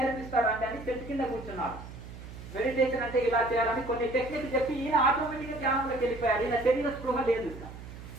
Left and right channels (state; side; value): noise; right; hum, 13 dB below the sound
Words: అని చెట్టు కింద కూర్చున్నారు. మెడిటేషన్ అంటే ఇలా చేయాలని కొన్ని టెక్నిక్ చెప్పి ఈయన ఆటోమేటిక్గా ధ్యానంలోకి వెళ్ళిపోయారు. ఈయన శరీర స్పృహ లేదు.